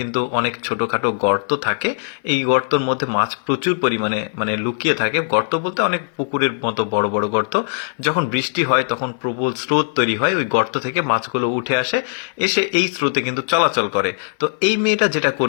অনেক ছোটখাটো গর্ত থাকে। এই গর্তর মধ্যে মাছ প্রচুর পরিমাণে লুকিয়ে থাকে। গর্ত বলতে অনেক পুকুরের মতো বড় বড় গর্ত। যখন বৃষ্টি হয় তখন প্রবল স্রোত তৈরি হয়, ওই গর্ত থেকে মাছগুলো উঠে আসে, এসে এই স্রোতে কিন্তু চলাচল করে। তো এই মেয়েটা যেটা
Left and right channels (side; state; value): right; silent; 59 dB below the other